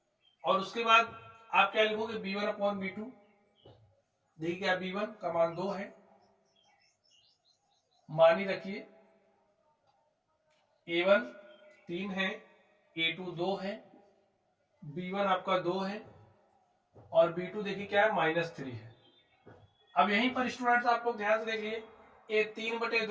और उसके बाद आप क्या लिखोगे, b1/b2। देखिए क्या, b1 का मान 2 है, मान ही रखिए, a1 3 है, a2 2 है, b1 आपका 2 है, और b2 देखिए क्या है, -3 है। अब यहीं पर स्टूडेंट्स आप लोग ध्यान से देखिए, ए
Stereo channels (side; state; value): both; identical; correlation 1.00